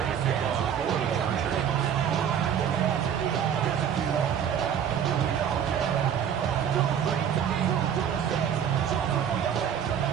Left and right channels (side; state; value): left; quieter; 8.6 dB